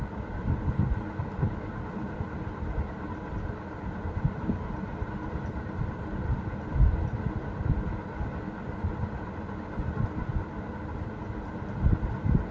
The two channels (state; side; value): identical; both; correlation 1.00